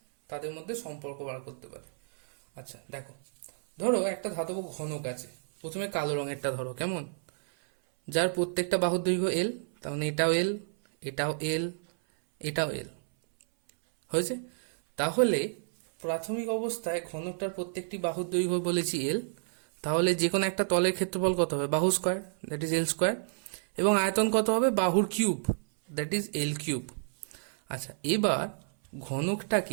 তাদের মধ্যে সম্পর্ক বার করতে পারে। আচ্ছা দেখো, ধরো একটা ধাতব ঘনক আছে, প্রথমে কালো রঙেরটা ধরো, কেমন, যার প্রত্যেকটা বাহুর দৈর্ঘ্য এল, তার মানে এটাও এল, এটাও এল, এটাও এল, হয়েছে। তাহলে প্রাথমিক অবস্থায় ঘনকটার প্রত্যেকটি বাহুর দৈর্ঘ্য বলেছি এল, তাহলে যে কোনো একটা তলের ক্ষেত্রফল কত হবে, বাহু square, that is L square, এবং আয়তন কত হবে, বাহুর cube, that is L cube. আচ্ছা, এবার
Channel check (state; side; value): silent; left; 58 dB below the other